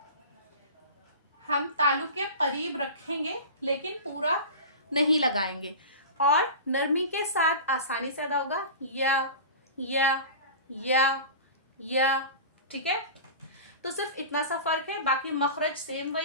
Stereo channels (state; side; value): inverted; both; correlation -0.32